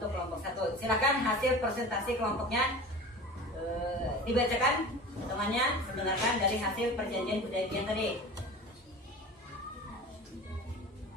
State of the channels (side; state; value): both; normal; correlation 0.36